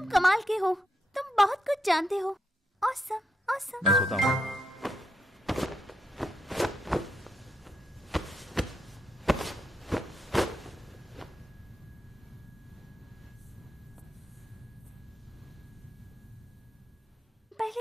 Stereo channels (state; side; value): normal; both; correlation 0.82